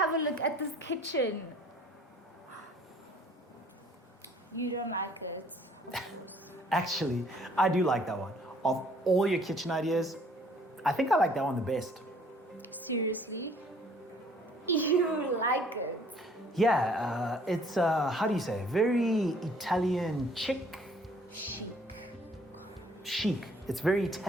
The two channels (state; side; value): normal; both; correlation 0.58